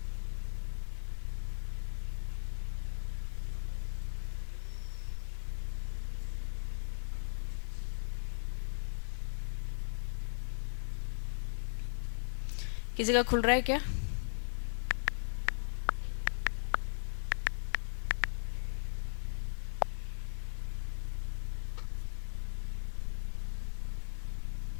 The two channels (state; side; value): silent; right; digital silence